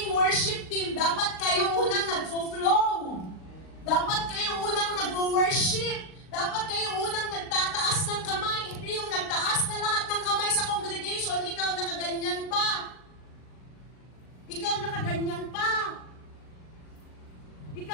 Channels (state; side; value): late; right; 39 ms